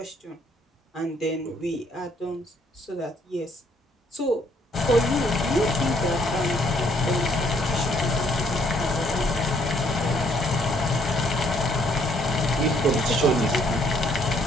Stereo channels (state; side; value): normal; both; correlation 0.66